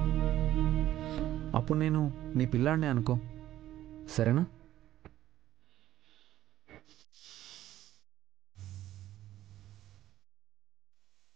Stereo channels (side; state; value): left; quieter; 13.4 dB